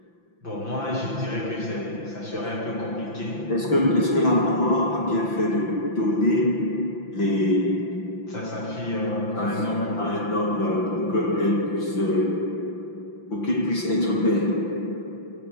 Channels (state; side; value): late; right; 5.9 ms